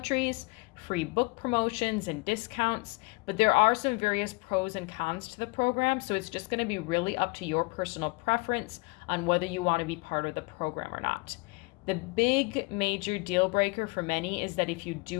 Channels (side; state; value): right; quieter; 27.5 dB